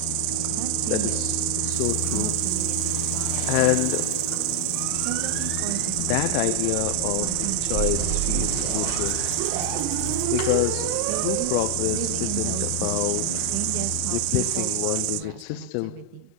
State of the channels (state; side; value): different; both; correlation 0.00